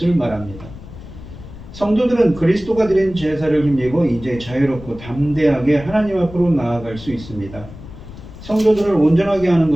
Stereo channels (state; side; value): noise; left; rumble, 15 dB below the sound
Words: 말합니다. 성도들은 그리스도가 드린 제사를 힘입어 이제 자유롭고 담대하게 하나님 앞으로 나아갈 수 있습니다. 성도들을 온전하게 하는